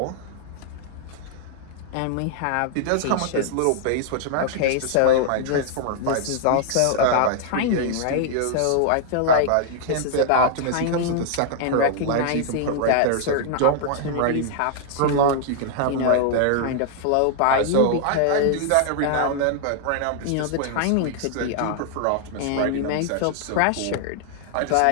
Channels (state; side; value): different; both; correlation -0.01